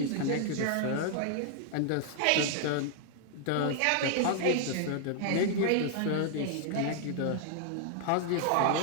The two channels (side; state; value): both; different; correlation 0.00